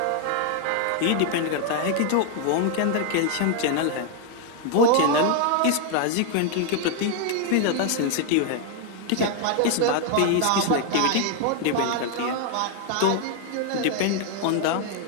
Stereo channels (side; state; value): both; different; correlation 0.00